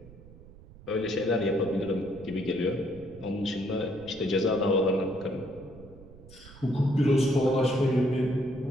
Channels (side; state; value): right; noise; rumble, 20 dB below the sound